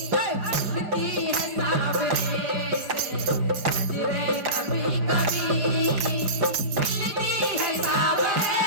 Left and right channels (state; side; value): late; left; 4.8 ms